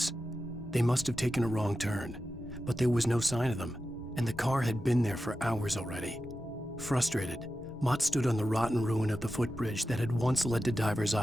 They must have taken a wrong turn, but there was no sign of them, and the car had been there for hours already. Frustrated, Mott stood on the rotten ruin of the footbridge that had once led to Diver's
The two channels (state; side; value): normal; both; correlation 0.92